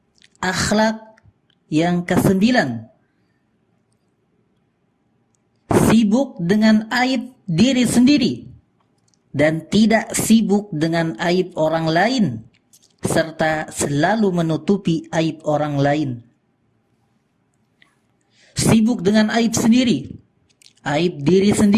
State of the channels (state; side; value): identical; both; correlation 1.00